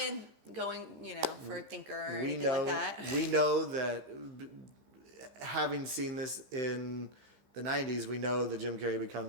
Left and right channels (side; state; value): left; late; 15 ms